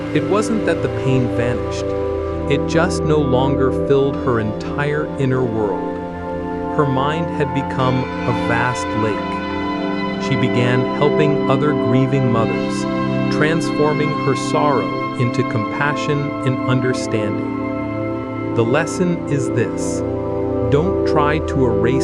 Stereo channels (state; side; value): identical; both; correlation 1.00